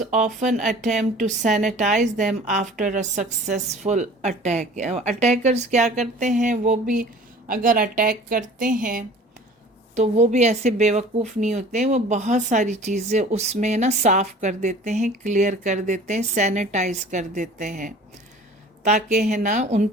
often attempt to sanitize them after a successful attack. Attackers کیا کرتے ہیں، وہ بھی اگر attack کرتے ہیں تو وہ بھی ایسے بیوقوف نہیں ہوتے ہیں، وہ بہت ساری چیزیں اس میں نا صاف کر دیتے ہیں، کلیئر کر دیتے ہیں، سینیٹائز کر دیتے ہیں تاکہ ہے نا ان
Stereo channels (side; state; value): both; normal; correlation 0.45